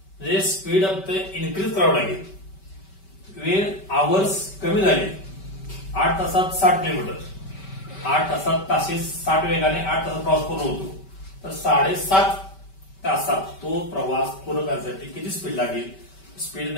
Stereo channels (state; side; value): late; right; 5.2 ms